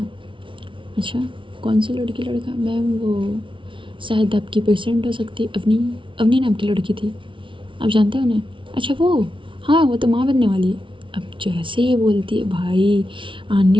अच्छा, कौन सी लड़की लड़का? मैम वो शायद आपकी पेशेंट हो सकती है, अवनी। अवनी नाम की लड़की थी, आप जानते हो उन्हें? अच्छा वो, हाँ वो तो माँ बनने वाली है। अब जैसे ही बोलती है भाई,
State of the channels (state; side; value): late; left; 0.25 ms